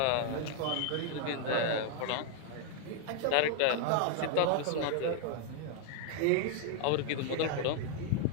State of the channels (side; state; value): both; different; correlation 0.00